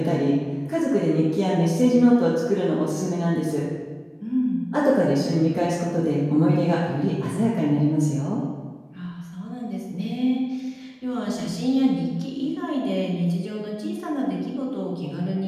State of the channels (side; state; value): both; identical; correlation 1.00